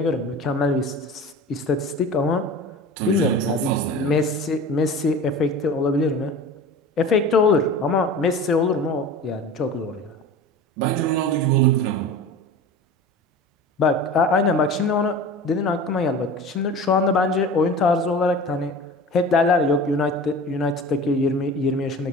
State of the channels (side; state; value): both; normal; correlation 0.36